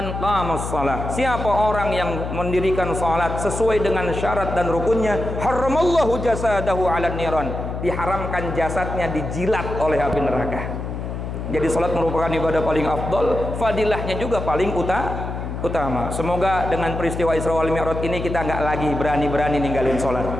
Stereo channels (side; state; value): left; noise; hum, 5 dB below the sound